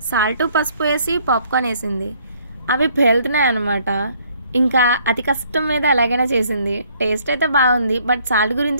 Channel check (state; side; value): inverted; both; correlation -0.63